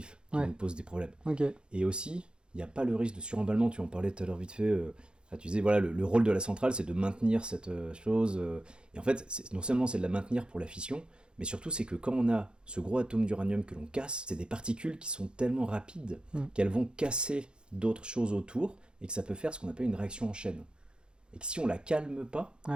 qui nous posent des problèmes. Okay. Et aussi, il n'y a pas le risque de suremballement, tu en parlais tout à l'heure vite fait, tu disais, voilà, le rôle de la centrale, c'est de maintenir cette chose, et en fait, non seulement c'est de la maintenir pour la fission, mais surtout c'est que quand on a ce gros atome d'uranium que l'on casse, c'est des particules qui sont tellement rapides qu'elles vont casser d'autres choses autour, et que ça peut faire ce qu'on appelle une réaction en chaîne. Et que si on la calme pas,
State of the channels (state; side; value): late; left; 0.051 ms